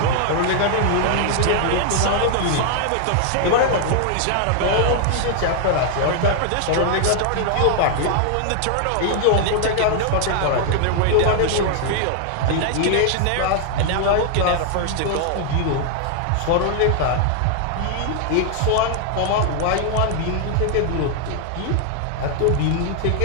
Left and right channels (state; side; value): different; both; correlation 0.00